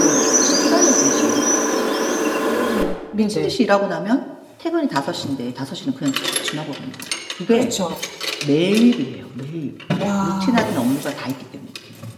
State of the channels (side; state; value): both; identical; correlation 1.00